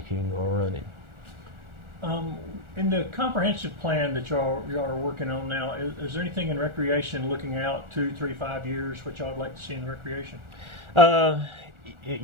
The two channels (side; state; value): left; late; 1.4 ms